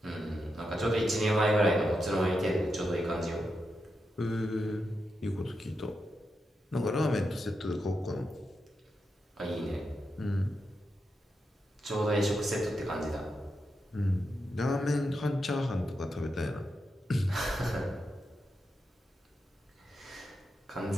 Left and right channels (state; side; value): normal; both; correlation 0.86